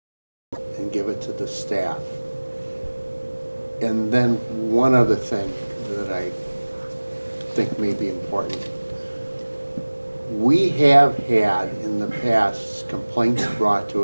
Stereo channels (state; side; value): inverted; both; correlation -1.00